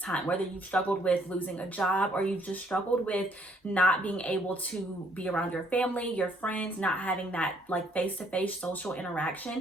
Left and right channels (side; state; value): both; normal; correlation 0.66